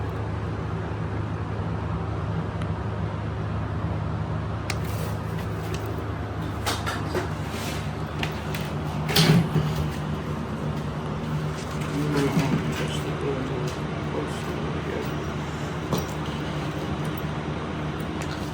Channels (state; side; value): identical; both; correlation 1.00